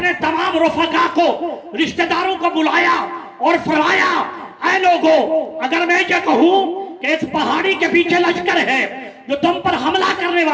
تمام رفقا کو، رشتہ داروں کو بلایا اور فرمایا، اے لوگو، اگر میں یہ کہوں کہ اس پہاڑی کے پیچھے لشکر ہے جو تم پر حملہ کرنے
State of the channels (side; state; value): both; identical; correlation 1.00